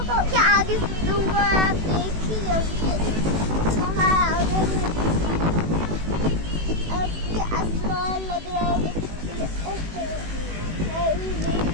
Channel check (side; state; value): left; late; 18 ms